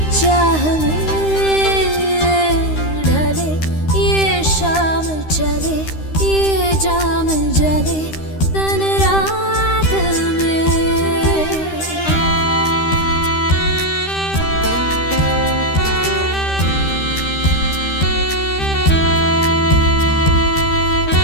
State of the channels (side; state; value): right; late; 13 ms